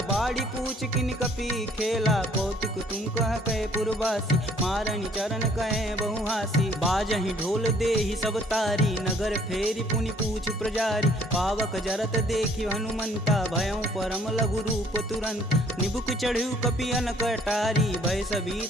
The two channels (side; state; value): both; normal; correlation 0.60